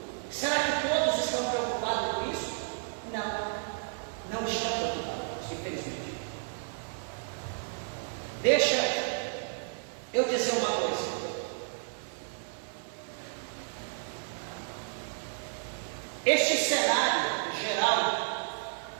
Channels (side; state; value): left; silent; 56 dB below the other